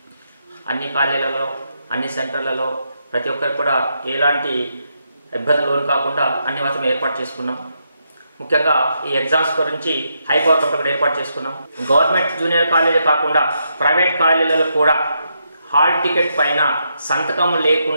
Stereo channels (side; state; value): both; inverted; correlation -0.81